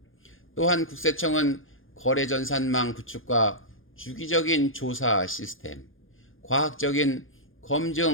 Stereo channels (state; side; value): late; right; 0.59 ms